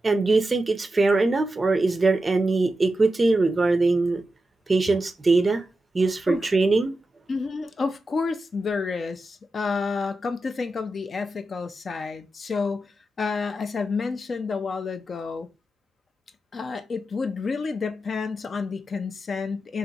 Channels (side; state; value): both; normal; correlation 0.89